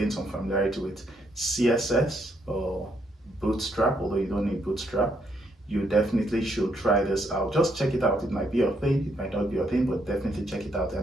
some familiarity with CSS or Bootstrap, although you don't need Bootstrap, you definitely should try this out. Just check it out. It might be your thing, it might not be your thing, but definitely check it out.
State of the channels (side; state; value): both; normal; correlation 0.74